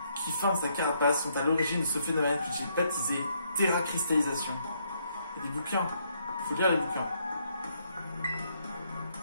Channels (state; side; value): inverted; both; correlation -0.72